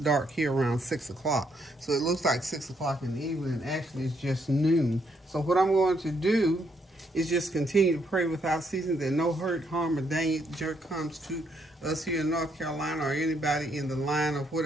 here around 6 o'clock, so it looks like 6 o'clock in the evening. Actually, it's just noon. So what I'm going to do is just continue to pray without ceasing that no hurt, harm, or danger comes to us here in North Carolina or anybody in the line of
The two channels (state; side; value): normal; both; correlation 0.73